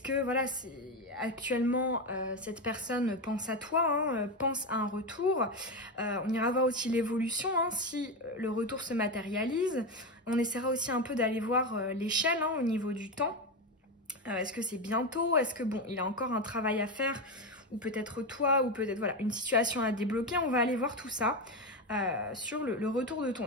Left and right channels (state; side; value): normal; both; correlation 0.14